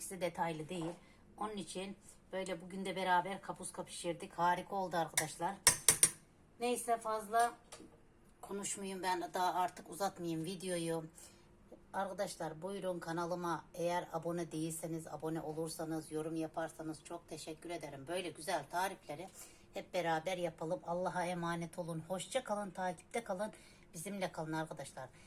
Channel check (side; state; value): both; identical; correlation 1.00